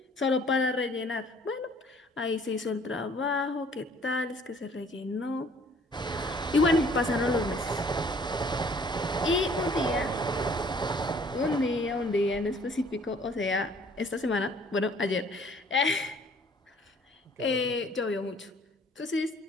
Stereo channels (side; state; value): both; normal; correlation 0.57